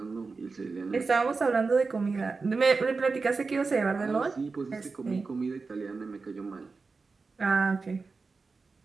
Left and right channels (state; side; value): quieter; left; 4.3 dB